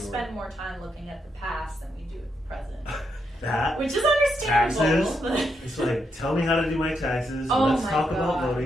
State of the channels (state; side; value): normal; both; correlation 0.80